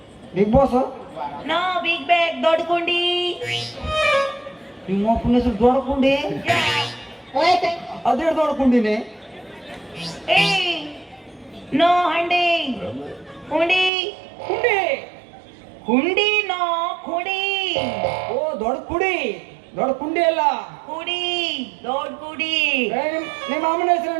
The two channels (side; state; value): left; drops out; at 13.9 s